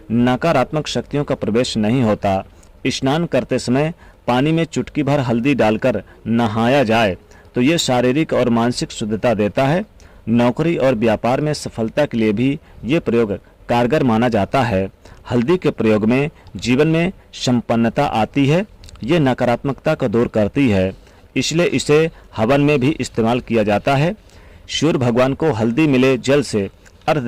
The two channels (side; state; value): both; identical; correlation 1.00